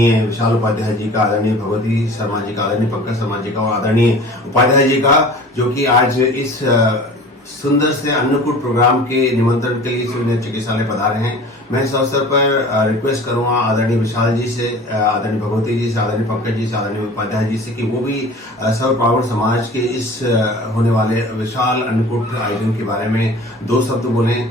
विशाल उपाध्याय जी का, आदरणीय भगवती शर्मा जी का, आदरणीय पंकज शर्मा जी का और आदरणीय उपाध्याय जी का, जो कि आज इस सुंदर से अन्नकूट प्रोग्राम के निमंत्रण के लिए सूर्य चिकित्सालय पधारे हैं। मैं इस अवसर पर रिक्वेस्ट करूंगा आदरणीय विशाल जी से, आदरणीय भगवती जी से, आदरणीय पंकज जी से, आदरणीय उपाध्याय जी से कि वो भी सर्व ब्राह्मण समाज के इस होने वाले विशाल अन्नकूट आयोजन के बारे में दो शब्द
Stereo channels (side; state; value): both; normal; correlation 0.42